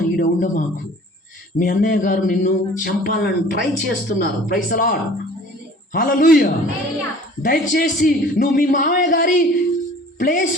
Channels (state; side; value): normal; both; correlation 0.48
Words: ఈడ ఉండమాకు, మీ అన్నయ్య గారు నిన్ను చంపాలని ట్రై చేస్తున్నారు, ప్రైజ్ ది లార్డ్, హల్లెలూయా. దయచేసి నువ్వు మీ మామయ్య గారి